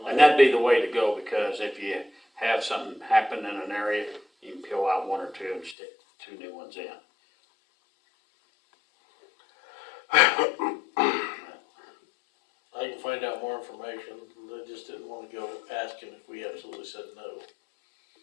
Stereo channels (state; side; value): drops out; right; at 5.8 s